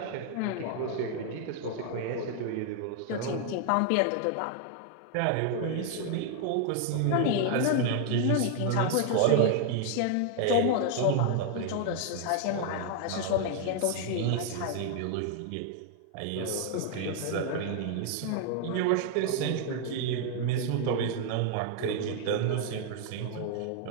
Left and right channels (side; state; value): both; different; correlation 0.00